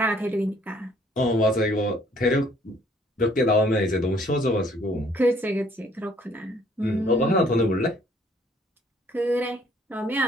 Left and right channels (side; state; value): both; normal; correlation 0.61